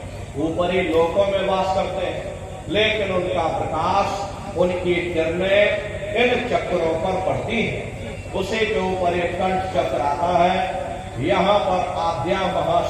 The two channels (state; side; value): identical; both; correlation 1.00